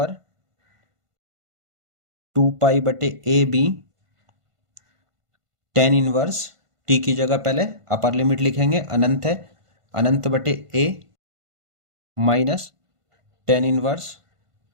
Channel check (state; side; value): late; left; 1.5 ms